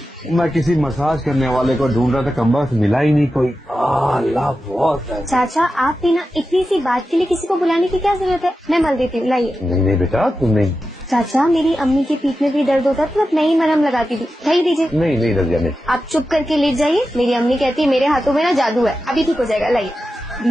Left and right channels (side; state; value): both; normal; correlation 0.91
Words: मैं किसी मसाज करने वाले को ढूंढ रहा था, कम्बख्त मिला ही नहीं कोई। अल्लाह बहुत है। चाचा, आप भी ना इतनी सी बात के लिए किसी को बुलाने की क्या जरूरत है? मैं मल देती हूँ, लाइए। नहीं बेटा, तुम नहीं। चाचा, मेरी अम्मी की पीठ में भी दर्द होता तो मैं ही मरहम लगाती थी, लाइए दीजिए। नहीं रजिया, नहीं। आप चुप करके लेट जाइए, मेरी अम्मी कहती है मेरे हाथों में ना जादू है, अभी ठीक हो जाएगा, लाइए।